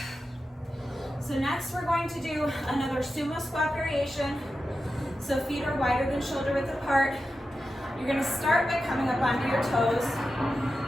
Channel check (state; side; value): normal; both; correlation 0.91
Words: So next we're going to do another sumo squat variation. So feet are wider than shoulder width apart. You're gonna start by coming up onto your toes.